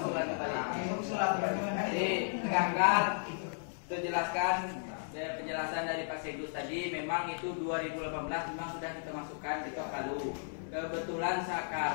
kembali. Usulan kembali. Jadi tegakkan, itu jelaskan. Penjelasan dari Pak Sedus tadi memang itu 2018 memang sudah kita masukkan di Ketok Palu. Kebetulan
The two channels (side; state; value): right; silent; 55 dB below the other